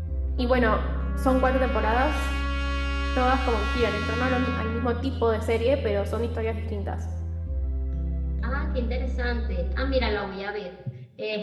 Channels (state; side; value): identical; both; correlation 1.00